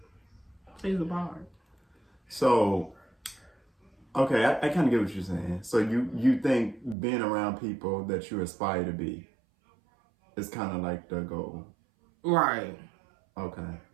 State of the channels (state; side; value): drops out; left; at 7.0 s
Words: plays a part. So Okay, I kind of get what you're saying. So you think being around people that you aspire to be is kind of like the goal. Right. Okay.